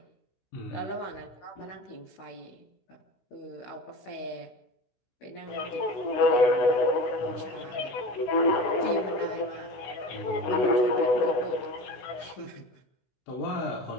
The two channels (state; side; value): late; right; 16 ms